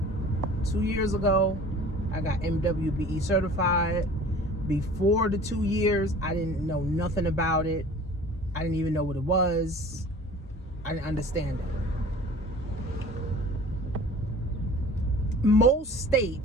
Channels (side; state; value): both; normal; correlation 0.44